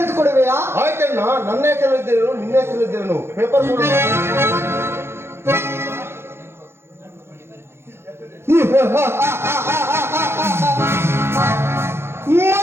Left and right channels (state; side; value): late; left; 0.12 ms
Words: ಆಯ್ತಣ್ಣ, ನನ್ನ ಹೆಸರಲ್ಲಿದ್ದೇನು ನಿನ್ನ ಹೆಸರಲ್ಲಿದ್ದೇನು ಪೇಪರ್ ಕೊಡು.